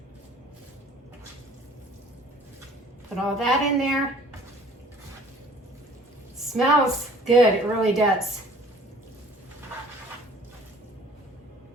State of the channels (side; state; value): both; normal; correlation 0.52